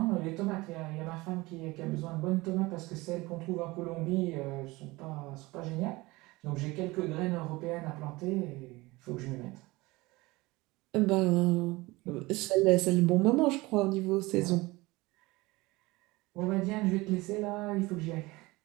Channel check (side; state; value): left; quieter; 21.7 dB